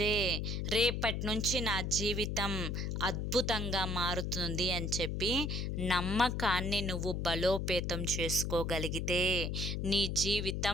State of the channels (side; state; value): left; noise; hum, 1 dB below the sound